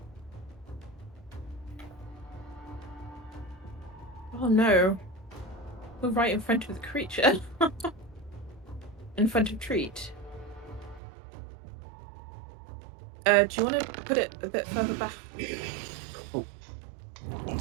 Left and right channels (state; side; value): drops out; left; at 11.0 s